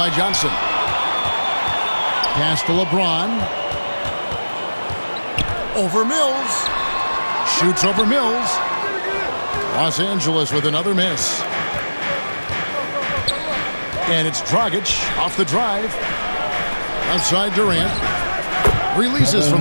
Johnson. Pass to LeBron. Over Mills. Shoots over Mills. Los Angeles with another miss. And it's Dragic off the drive. Outside Durant. Releases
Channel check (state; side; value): inverted; both; correlation -1.00